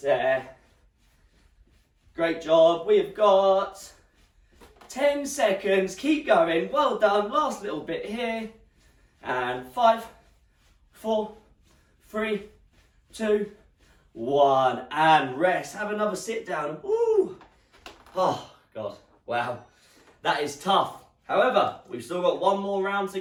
there. Great job, we've got 10 seconds, keep going, well done, last little bit here. And 5, 4, 3, 2, 1, and rest. Have another sit down. Ooh. Oh, God, wow, that is tough. However, we've still got one more round to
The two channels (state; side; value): identical; both; correlation 1.00